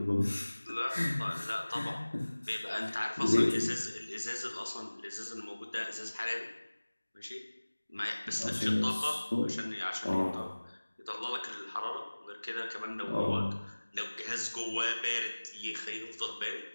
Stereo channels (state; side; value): inverted; both; correlation -1.00